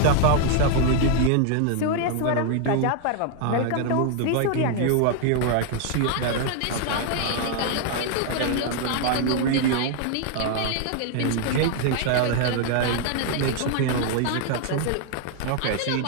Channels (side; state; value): both; different; correlation 0.00